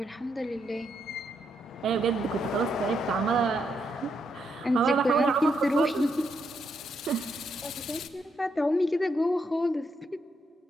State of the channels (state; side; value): normal; both; correlation 0.79